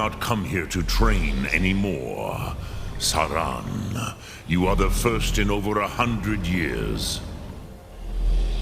come here to train anymore. Saran, you are the first in over 100 years.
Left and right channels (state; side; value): identical; both; correlation 1.00